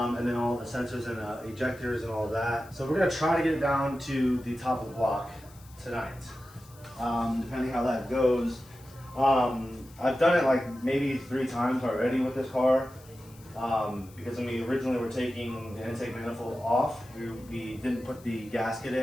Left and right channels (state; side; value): noise; left; hiss, 24 dB below the sound